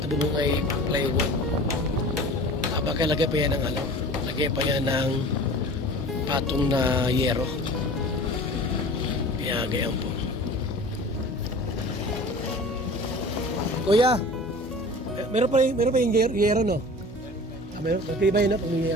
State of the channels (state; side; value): normal; both; correlation 0.40